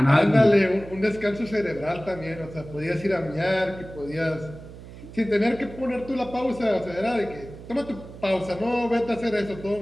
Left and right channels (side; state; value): right; noise; hum, 15 dB below the sound